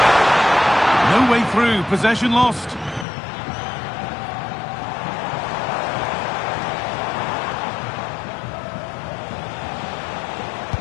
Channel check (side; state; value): right; drops out; at 3.1 s